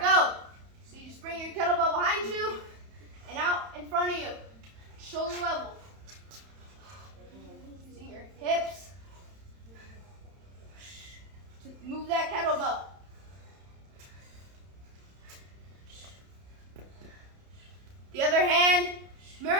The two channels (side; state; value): left; late; 31 ms